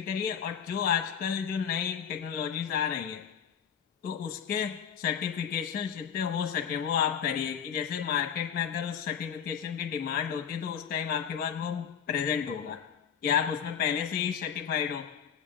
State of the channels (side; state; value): right; quieter; 8.0 dB